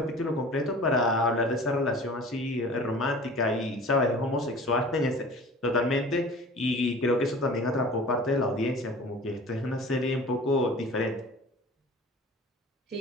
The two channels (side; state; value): both; normal; correlation 0.42